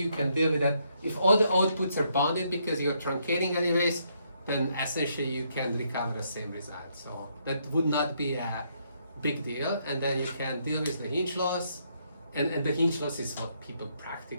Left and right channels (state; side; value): inverted; both; correlation -0.74